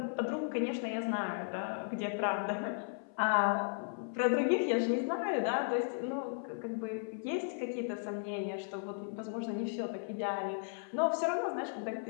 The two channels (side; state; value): right; silent; 54 dB below the other